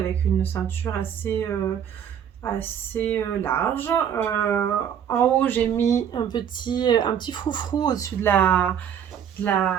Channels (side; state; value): left; quieter; 8.7 dB